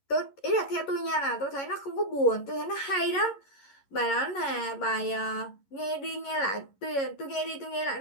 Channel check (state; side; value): late; right; 11 ms